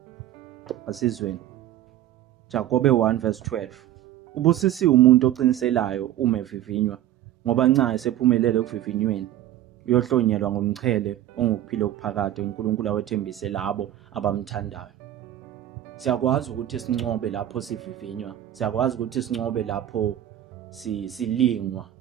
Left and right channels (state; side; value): quieter; left; 12.6 dB